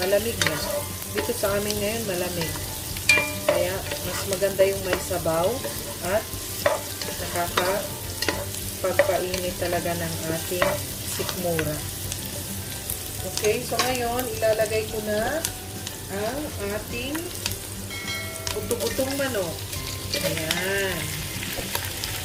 na. Dito sa amin ngayon, malamig. Kaya, mas maganda yung may sabaw at nakakapagpainit talaga ng ating sikmura. Okay, so ngayon, ilalagay ko na ang ating buto-butong manok. Ayan.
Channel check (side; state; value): both; identical; correlation 1.00